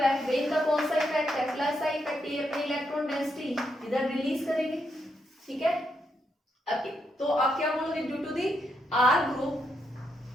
वे इनका कौन सा इफेक्ट है, प्लस सा इफेक्ट, ये अपनी इलेक्ट्रॉन डेंसिटी इधर रिलीज करेंगे. ठीक है, अब तो आप क्या बोलोगे, due to the R group,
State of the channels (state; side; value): normal; both; correlation 0.80